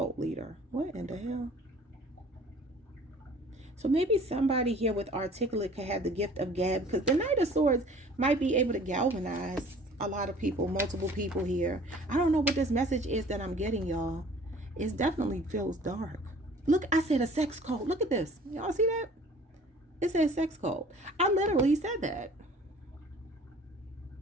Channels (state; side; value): normal; both; correlation 0.50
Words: leader. What in the hell? So maybe somebody here with articulate could have the gift of gab, because the Knight of Swords might be able to galvanize a lot of people, multiple people here. I don't know what this message is that I'm getting, y'all. It definitely feels dark. Look, I said a sex cult. Look at this. Y'all see that? It says sex cult. I literally said that.